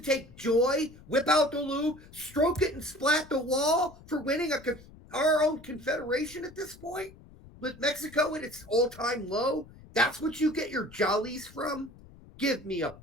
joy, whip out the lube, stroke it and splat the wall for winning our own confederation at this point? With Mexico at its all-time low? That's what you get your jollies from? Give me a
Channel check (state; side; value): noise; left; rumble, 21 dB below the sound